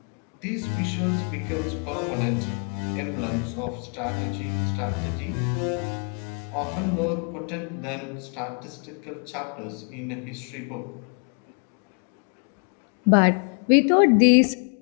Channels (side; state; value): right; quieter; 39.4 dB